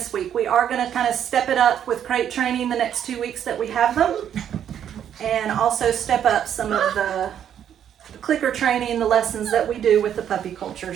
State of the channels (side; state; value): left; quieter; 9.5 dB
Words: week. We are going to kind of step it up with crate training the next 2 weeks that we have them, and also step up some of the clicker training, the lessons that we do with the puppy culture.